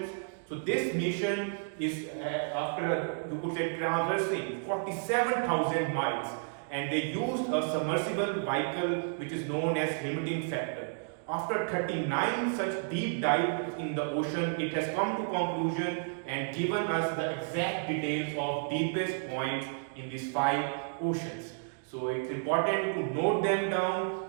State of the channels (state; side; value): silent; left; digital silence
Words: So this mission is after, you could say, traversing 47,000 miles, and they used a submersible vehicle which is known as limiting factor. After 39 such deep dives in the ocean, it has come to conclusion and given us the exact details of deepest points in these 5 oceans. So it's important to note them down